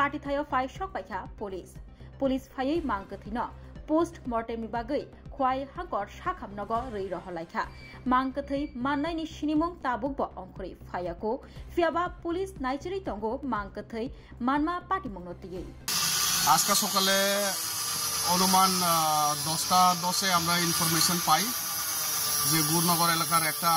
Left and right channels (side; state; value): both; identical; correlation 1.00